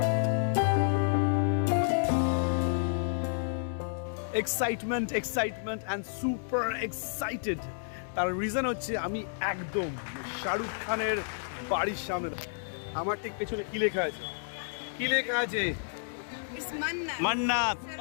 Excitement excitement and super excited. তার রিজন হচ্ছে আমি একদম শাহরুখ খানের বাড়ির সামনে। আমার ঠিক পেছনে কি লেখা আছে? কি লেখা আছে? মান্নাত।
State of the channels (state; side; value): silent; right; digital silence